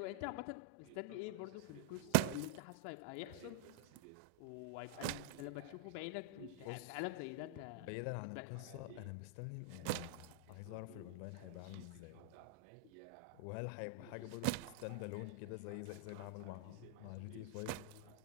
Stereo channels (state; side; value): different; both; correlation -0.01